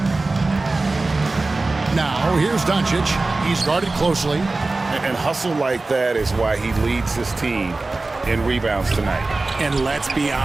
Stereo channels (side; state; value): left; quieter; 3.3 dB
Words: Now, here's Doncic. He's guarded closely. And hustle like that is why he leads his team in rebounds tonight. And let's be